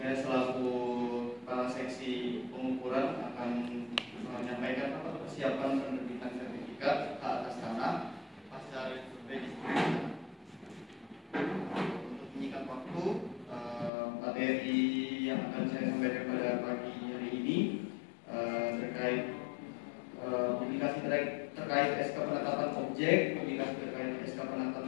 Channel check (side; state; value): right; drops out; at 13.9 s